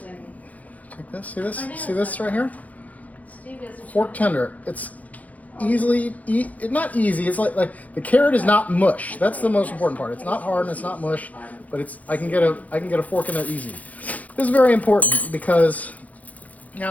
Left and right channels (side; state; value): right; late; 0.070 ms